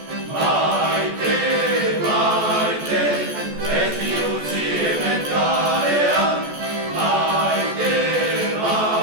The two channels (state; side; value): late; left; 14 ms